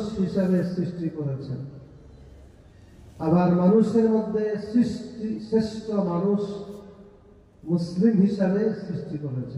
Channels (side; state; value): both; identical; correlation 1.00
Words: হিসাবে সৃষ্টি করেছেন। আবার মানুষের মধ্যে শ্রেষ্ঠ মানুষ মুসলিম হিসাবে সৃষ্টি